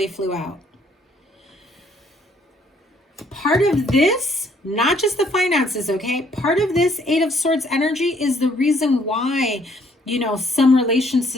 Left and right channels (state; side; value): normal; both; correlation 0.65